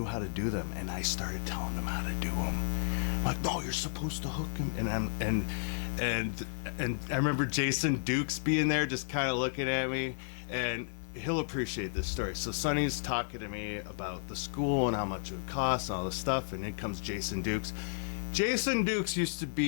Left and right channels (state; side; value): silent; right; digital silence